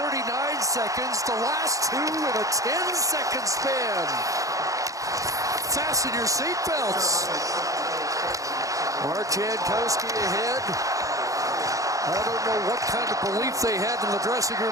seconds, the last 2 in a 10-second span. Fasten your seatbelts. Mark Jankowski ahead. I don't know what kind of belief they had in the dressing room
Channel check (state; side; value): late; left; 0.16 ms